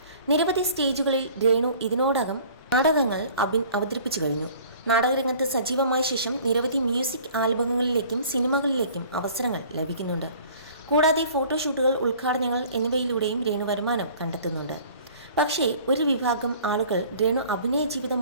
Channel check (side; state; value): both; inverted; correlation -0.50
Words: നിരവധി സ്റ്റേജുകളിൽ രേണു ഇതിനോടകം നാടകങ്ങൾ അവതരിപ്പിച്ചു കഴിഞ്ഞു. നാടകരംഗത്ത് സജീവമായ ശേഷം നിരവധി മ്യൂസിക് ആൽബങ്ങളിലേക്കും സിനിമകളിലേക്കും അവസരങ്ങൾ ലഭിക്കുന്നുണ്ട്. കൂടാതെ ഫോട്ടോഷൂട്ടുകൾ, ഉദ്ഘാടനങ്ങൾ എന്നിവയിലൂടെയും രേണു വരുമാനം കണ്ടെത്തുന്നുണ്ട്. പക്ഷേ ഒരു വിഭാഗം ആളുകൾ രേണു അഭിനയ